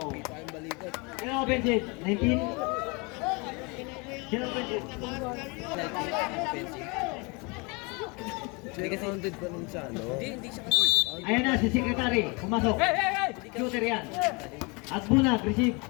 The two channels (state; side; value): quieter; right; 29.3 dB